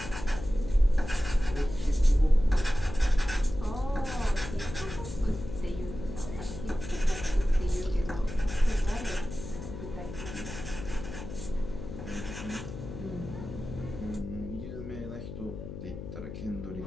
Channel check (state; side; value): noise; left; hum, 9 dB below the sound